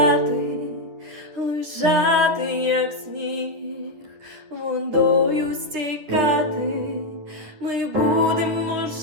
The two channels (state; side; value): late; left; 9.7 ms